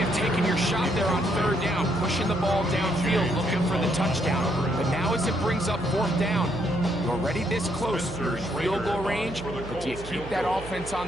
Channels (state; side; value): noise; right; hum, 13 dB below the sound